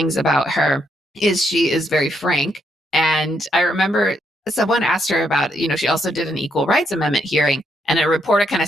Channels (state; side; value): normal; both; correlation 0.76